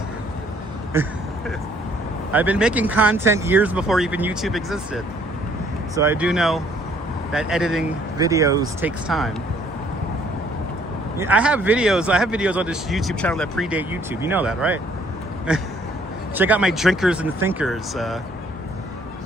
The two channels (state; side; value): normal; both; correlation 0.63